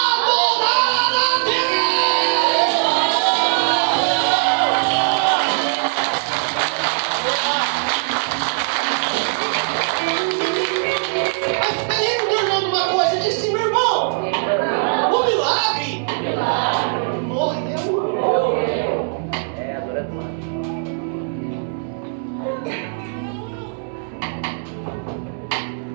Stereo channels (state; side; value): silent; left; digital silence